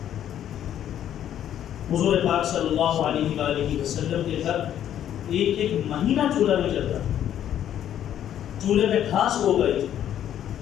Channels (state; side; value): quieter; right; 10.7 dB